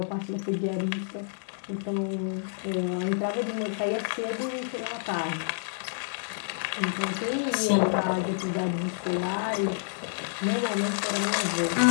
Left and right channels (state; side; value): silent; right; digital silence